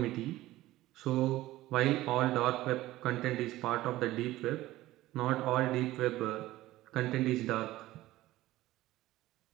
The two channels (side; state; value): left; quieter; 16.4 dB